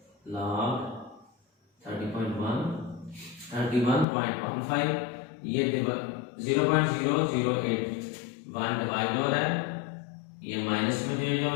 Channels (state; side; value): drops out; right; at 4.0 s